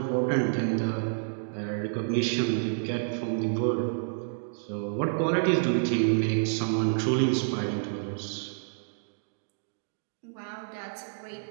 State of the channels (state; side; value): silent; left; digital silence